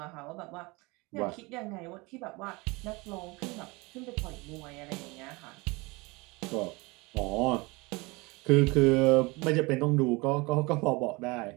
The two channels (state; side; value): quieter; left; 25.1 dB